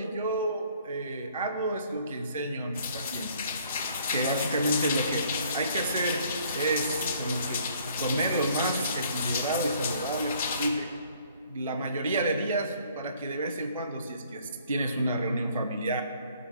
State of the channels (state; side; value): inverted; both; correlation -0.60